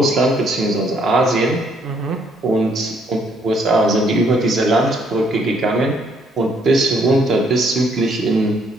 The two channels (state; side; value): normal; both; correlation 0.69